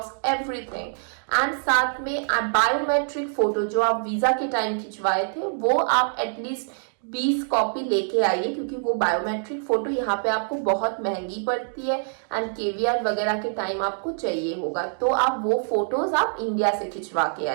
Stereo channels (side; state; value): left; silent; digital silence